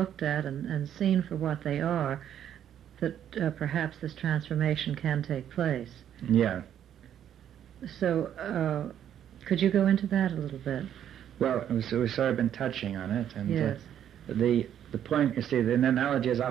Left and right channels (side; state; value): left; quieter; 10.0 dB